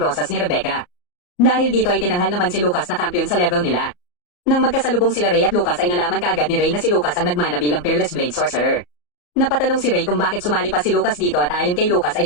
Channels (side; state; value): right; late; 34 ms